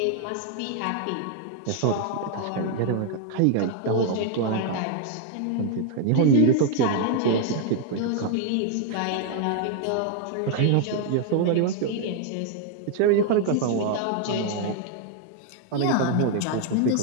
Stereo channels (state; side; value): different; both; correlation 0.00